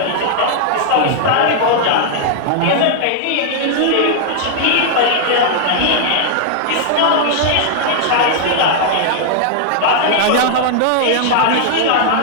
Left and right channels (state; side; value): different; both; correlation -0.01